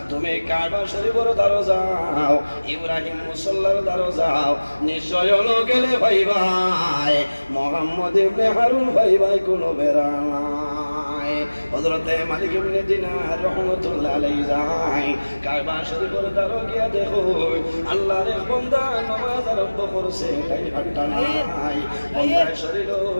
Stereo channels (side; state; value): both; inverted; correlation -1.00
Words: তুমি কাবা শরীফের দ্বারে যাও, ইব্রাহিম মুসাল্লার দ্বারে যাও, নিশ্চয় গেলে ভাইবা মুহাম্মদ ইবনে হারুন ভাই কোনো বেড়া নাই। হযরতে মালিক ইবনে দিনার রাহমাতুল্লাহ আলাইহি যায়, কাবা শরীফের দ্বারে গিয়া দেখো আল্লাহর এক বান্দা নামাজ আরম্ভ করছে, তাই হাঁটা নাই, বান্দার শরীর